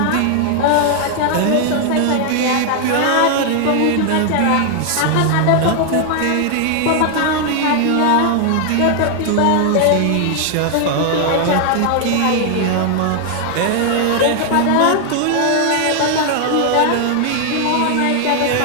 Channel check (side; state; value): both; different; correlation 0.00